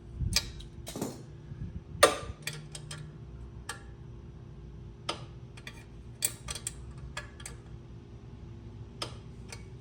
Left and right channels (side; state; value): both; identical; correlation 1.00